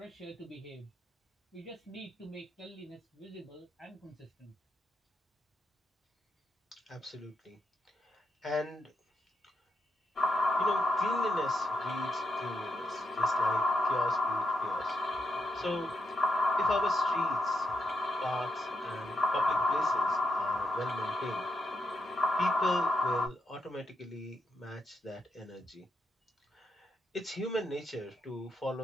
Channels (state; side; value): normal; both; correlation 0.82